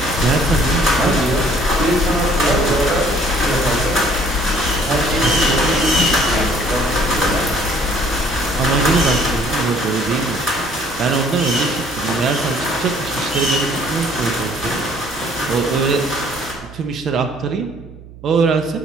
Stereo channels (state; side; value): noise; right; hum, 18 dB below the sound